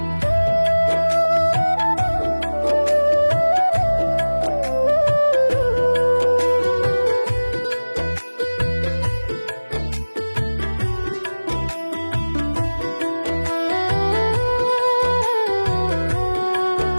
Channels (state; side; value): inverted; both; correlation -1.00